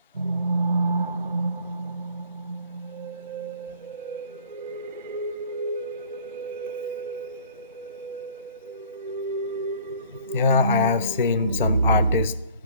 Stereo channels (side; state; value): both; inverted; correlation -0.52